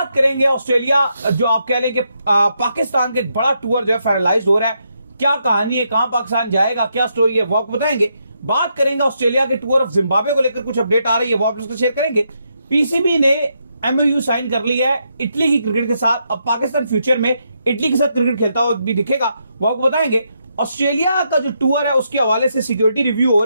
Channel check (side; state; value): both; inverted; correlation -0.79